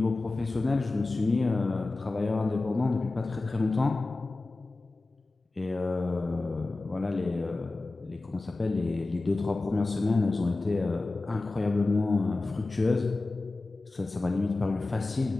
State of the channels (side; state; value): right; quieter; 3.2 dB